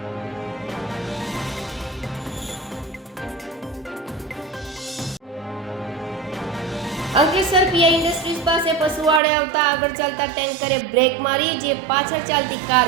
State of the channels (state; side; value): drops out; left; at 9.2 s